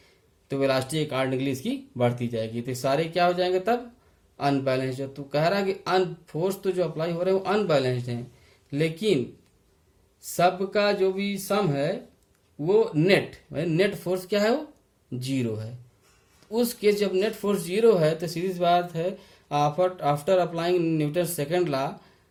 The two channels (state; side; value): identical; both; correlation 1.00